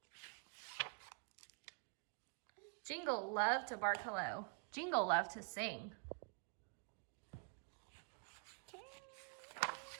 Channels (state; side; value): quieter; left; 38.1 dB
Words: Jingle loved to bark hello. Jingle loved to sing.